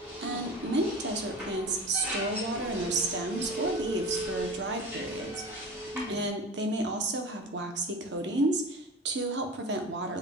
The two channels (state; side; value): normal; both; correlation 0.33